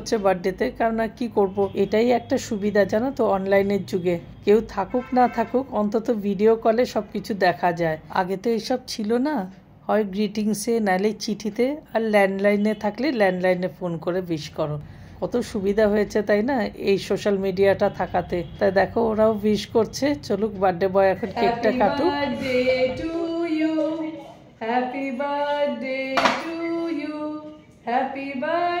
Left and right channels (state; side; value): identical; both; correlation 1.00